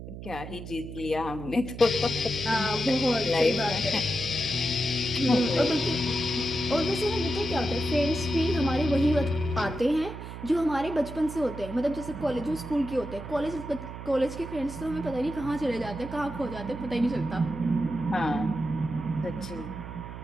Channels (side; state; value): right; noise; hum, 11 dB below the sound